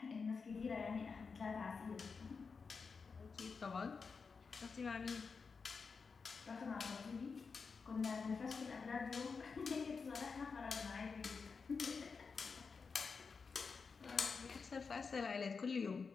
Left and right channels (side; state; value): right; quieter; 5.1 dB